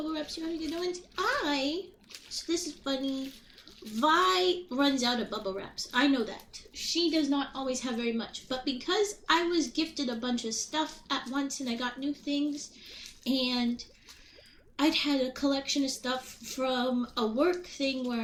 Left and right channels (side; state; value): both; identical; correlation 1.00